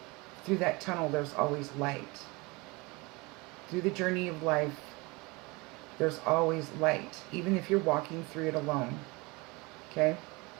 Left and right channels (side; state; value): left; quieter; 25.3 dB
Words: Through that tunnel, there's always light. Through the journey of life, there's always light. Even if you're walking through it alone. Okay?